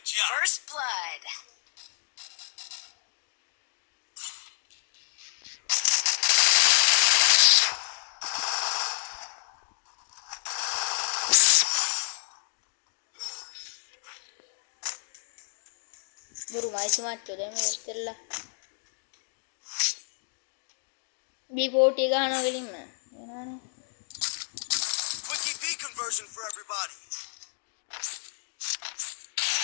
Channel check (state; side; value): silent; right; 58 dB below the other